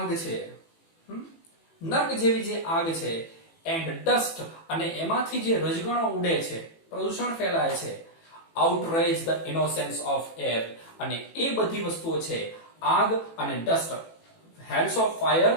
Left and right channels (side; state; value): right; late; 18 ms